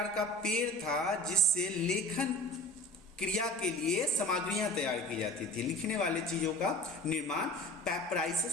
का पेड़ था जिससे लेखन क्रिया के लिए सामग्रियां तैयार की जाती थी। लिखने वाले चीजों का निर्माण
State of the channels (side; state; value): both; normal; correlation 0.39